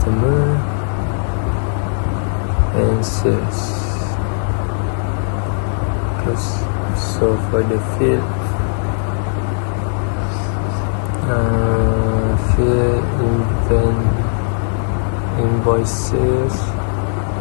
and sales. So for the field, invoices,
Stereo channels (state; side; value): silent; right; digital silence